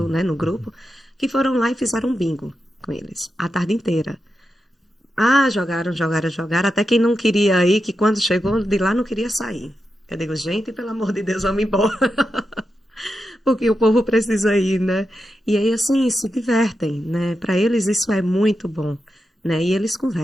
né, no grupo, que foram lá e fizeram um bingo com eles a tarde inteira. Jogaram, até quem não queria ir, que quando chegou de lá não queria sair. Eu digo, gente, pelo amor de Deus, vamos embora. Porque o povo precisa ir, né? E aí, assim, se divertem, né? Para eles isso é muito bom, né? E eles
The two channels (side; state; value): both; normal; correlation 0.88